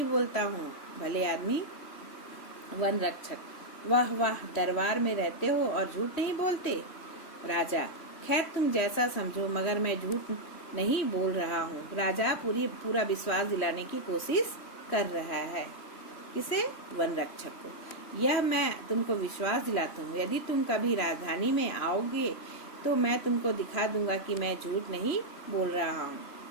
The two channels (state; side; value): late; right; 3.1 ms